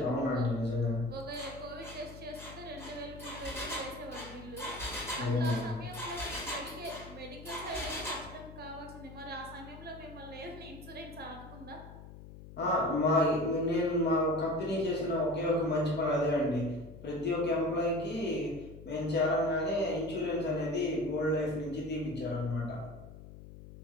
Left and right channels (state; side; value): noise; left; hum, 15 dB below the sound